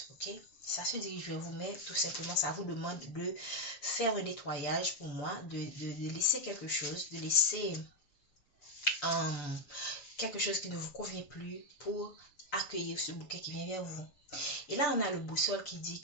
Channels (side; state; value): right; late; 6.9 ms